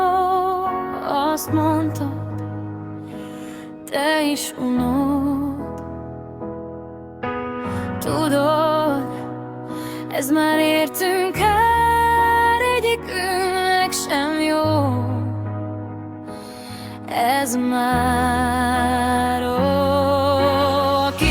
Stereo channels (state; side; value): identical; both; correlation 1.00